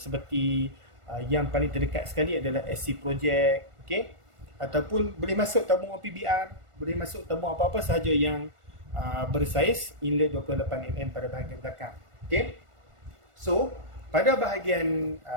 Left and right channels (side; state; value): left; late; 1.4 ms